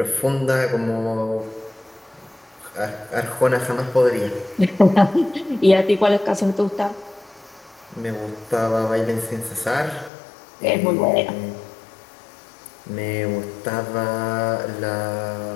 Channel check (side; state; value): right; drops out; at 10.1 s